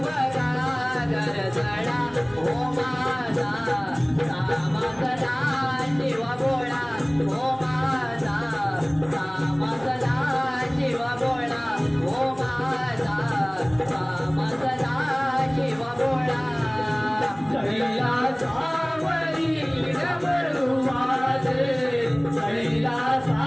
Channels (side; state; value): right; noise; rumble, 27 dB below the sound